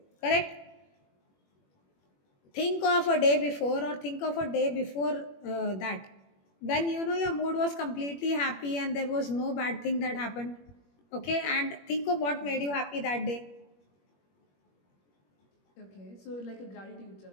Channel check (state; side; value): late; right; 21 ms